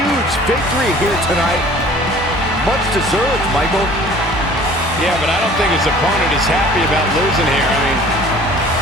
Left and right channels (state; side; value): normal; both; correlation 0.49